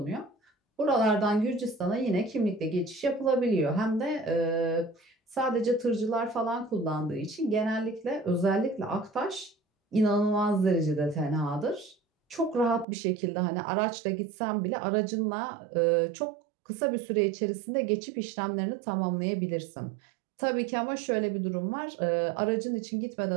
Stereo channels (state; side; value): drops out; left; at 12.9 s